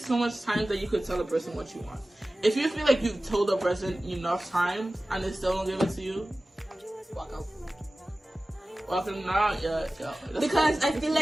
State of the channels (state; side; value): normal; both; correlation 0.96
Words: much time that you could tell a person what you want. If you feel like you've told a person enough time and they still don't give it to you, walk out. Walk them down, yeah. Because I feel